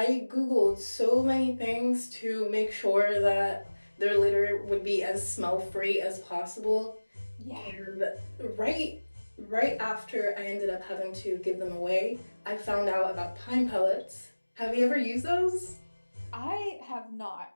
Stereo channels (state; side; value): inverted; both; correlation -1.00